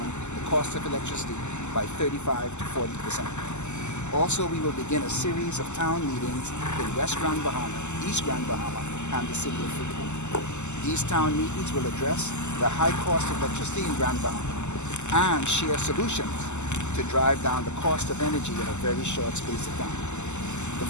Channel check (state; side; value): late; right; 0.83 ms